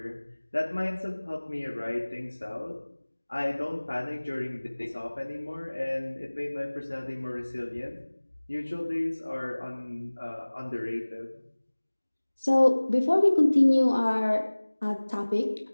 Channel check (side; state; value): both; inverted; correlation -1.00